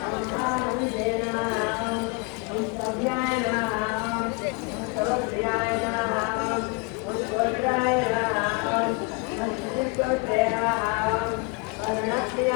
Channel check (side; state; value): right; quieter; 28.6 dB